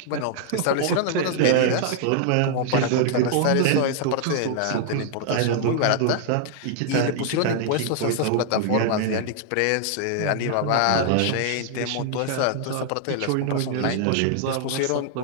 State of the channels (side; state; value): both; different; correlation -0.01